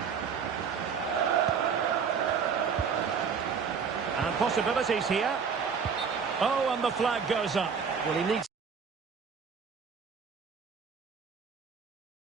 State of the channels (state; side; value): quieter; left; 6.3 dB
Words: And possibilities here. Oh, and the flag goes up. Well, he needs